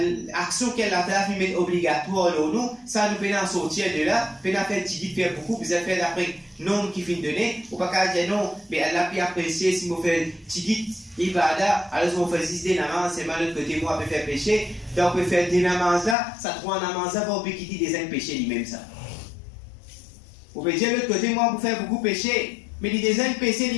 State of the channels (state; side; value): drops out; right; at 16.2 s